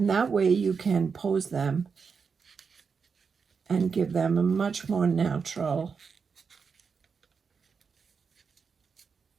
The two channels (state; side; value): quieter; left; 5.6 dB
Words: that way you can pose them and give them a much more natural